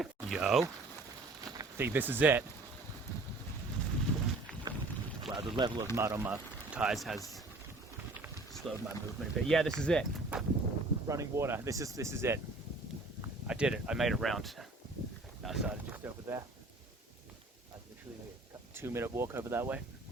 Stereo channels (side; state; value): left; quieter; 3.0 dB